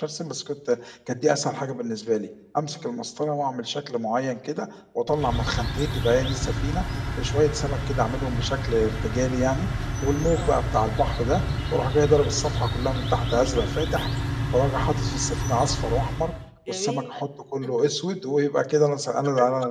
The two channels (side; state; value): both; identical; correlation 1.00